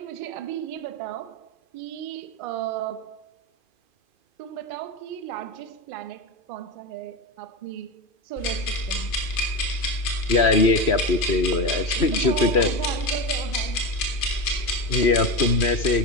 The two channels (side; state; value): right; late; 2.5 ms